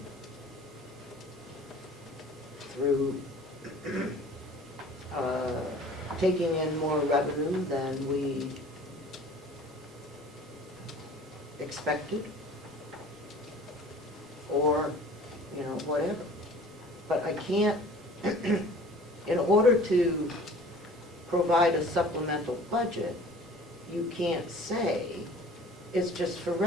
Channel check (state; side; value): normal; both; correlation 0.47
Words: through taking in more revenue than we expected, or, whatever. But I can't, in order to provide a supplemental budget, you can't say it's just for